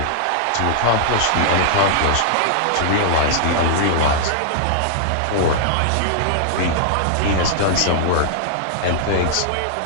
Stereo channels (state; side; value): different; both; correlation -0.01